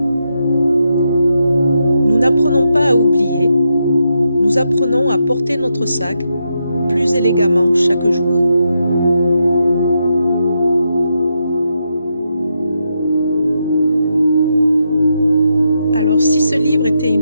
Nous n'apprenons pas à oublier, nous apprenons à porter notre sac plus élégamment chaque jour. Alors si ce livre était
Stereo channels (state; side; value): inverted; both; correlation -0.83